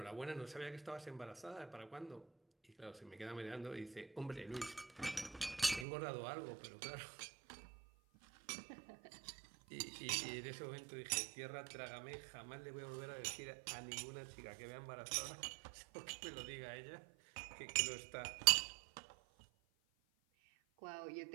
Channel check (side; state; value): left; drops out; at 5.9 s